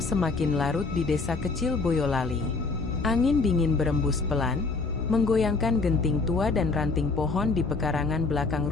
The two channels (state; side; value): quieter; right; 4.0 dB